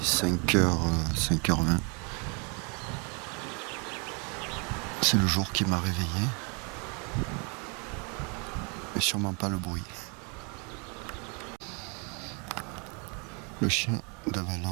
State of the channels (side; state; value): left; quieter; 34.4 dB